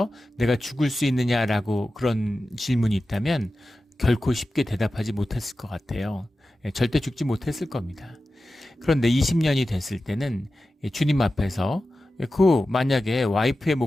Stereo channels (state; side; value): normal; both; correlation 0.94